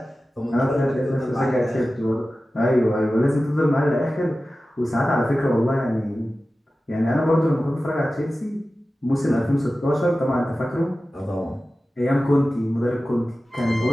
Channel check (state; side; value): normal; both; correlation 0.95